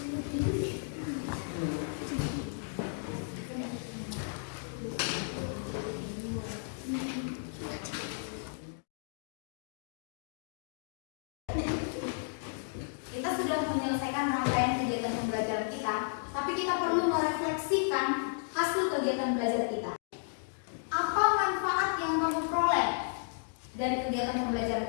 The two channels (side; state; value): right; silent; digital silence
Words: Kita sudah menyelesaikan rangkaian kegiatan pembelajaran kita, tapi kita perlu merefleksikan hasil kegiatan belajar kita. Apa manfaat yang kamu peroleh dari kegiatan